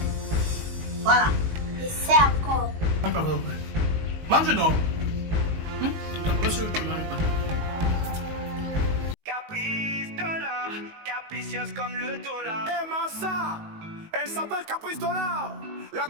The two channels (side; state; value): left; late; 19 ms